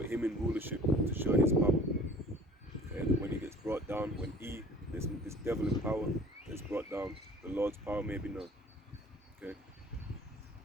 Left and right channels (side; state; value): both; normal; correlation 0.49